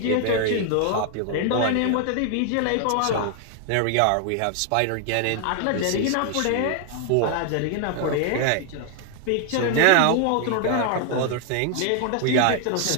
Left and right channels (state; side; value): different; both; correlation 0.00